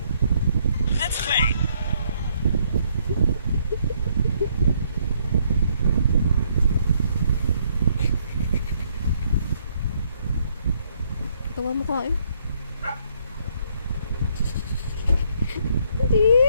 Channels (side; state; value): both; inverted; correlation -0.70